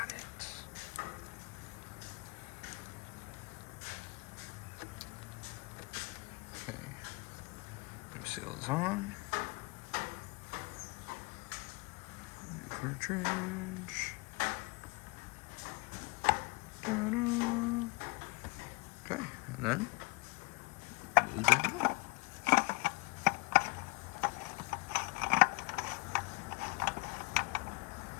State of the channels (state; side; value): quieter; right; 26.3 dB